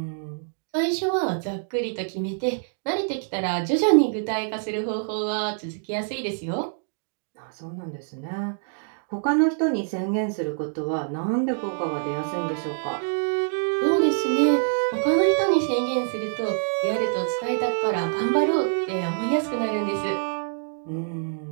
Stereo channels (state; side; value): silent; left; digital silence